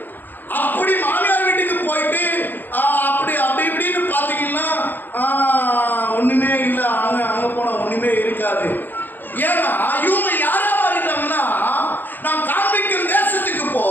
அப்படி மாமியார் வீட்டுக்கு போயிட்டு அப்படி இப்படின்னு பாத்தீங்கன்னா ஒண்ணுமே இல்லை, அங்க போனா ஒண்ணுமே இருக்காது. ஏன்னா இவங்க யாரா மாறிட்டாங்கன்னா, நான் காண்பிக்கும் தேசத்துக்கு போ,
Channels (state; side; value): late; right; 0.090 ms